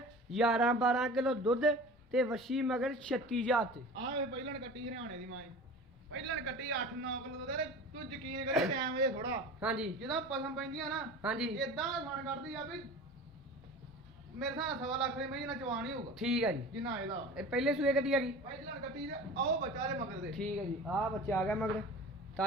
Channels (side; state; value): both; normal; correlation 0.37